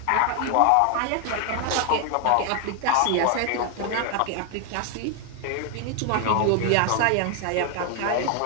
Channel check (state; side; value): different; both; correlation 0.01